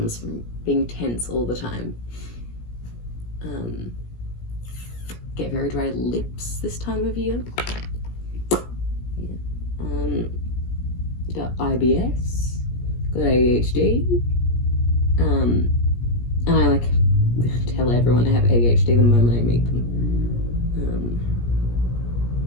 from being tense all the time. Get very dry lips this time of year. Yeah. Got IBS, got ADHD, and I like tell everyone I have ADHD the moment I meet them,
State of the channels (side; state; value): right; late; 17 ms